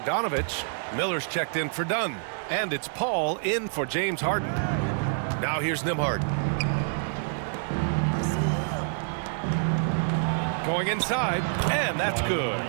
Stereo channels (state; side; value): silent; left; digital silence